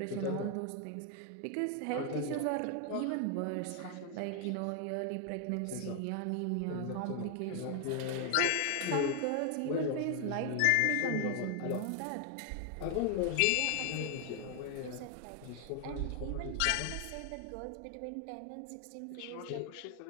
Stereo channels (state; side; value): different; both; correlation 0.00